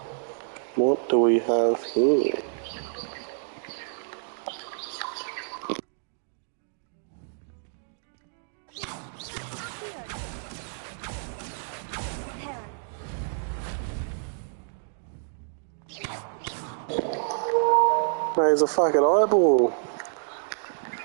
What do we have here? There's a fucking eyeball.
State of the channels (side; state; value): left; silent; digital silence